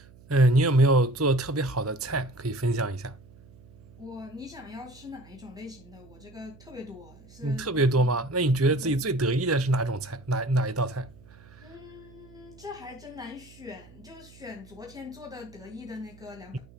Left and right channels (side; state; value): right; noise; hum, 23 dB below the sound